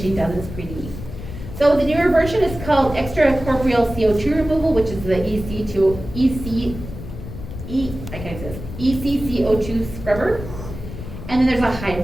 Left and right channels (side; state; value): left; noise; rumble, 10 dB below the sound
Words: does it. It's pretty neat. So the newer version is called extracorporeal CO2 removal, which is the ECCO2 scrubber. And then there's a